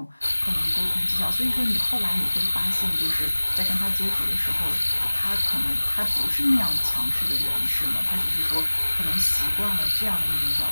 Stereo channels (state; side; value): inverted; both; correlation -1.00